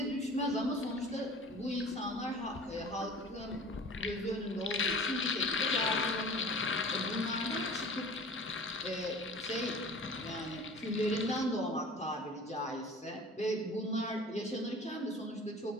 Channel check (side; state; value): both; normal; correlation 0.42